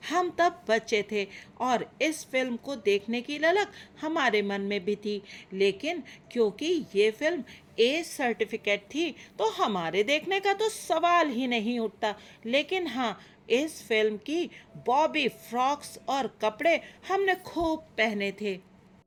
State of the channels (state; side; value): identical; both; correlation 1.00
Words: हम तब बच्चे थे और इस फिल्म को देखने की ललक हमारे मन में भी थी, लेकिन क्योंकि ये फिल्म ए सर्टिफिकेट थी तो हमारे देखने का तो सवाल ही नहीं उठता। लेकिन हाँ, इस फिल्म की बॉबी फ्रॉक्स और कपड़े हमने खूब पहने थे।